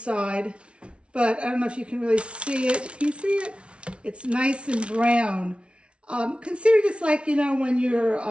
but I don't know if you can really see it. Can you see it? It's nice and brown. Consider this like, you know, when you're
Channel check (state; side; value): late; left; 0.059 ms